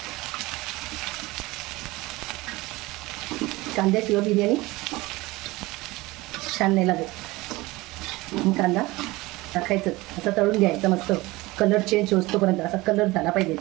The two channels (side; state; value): left; quieter; 20.9 dB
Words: कांद्याशिवाय बिर्याणी छान नाही लागत. कांदा टाकायचं, असं तळून घ्यायचं मस्त. कलर चेंज होतोपर्यंत असा कलर झाला पाहिजे.